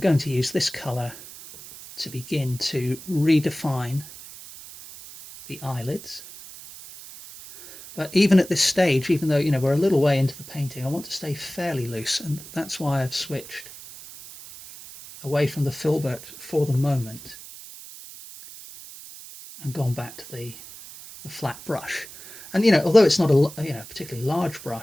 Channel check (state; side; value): noise; right; hiss, 16 dB below the sound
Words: to use this colour to begin to redefine the eyelids. But even at this stage, even though we're a little way into the painting, I want to stay fairly loose, and that's why I've switched away from the filbert for the moment and gone back to the flat brush. And although it's not a particularly large